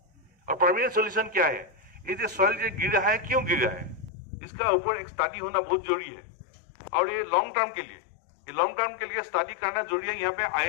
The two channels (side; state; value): right; drops out; at 4.1 s